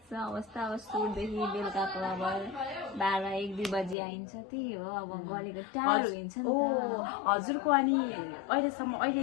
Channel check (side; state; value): right; drops out; at 4.0 s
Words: छ अवस्था। अब सुटदेखि बेलुकाको अब 12-1-2 बजी आइन्छ, त्यही हो। अब गलेको टाढो हुन्छ नि त। हजुरको अनि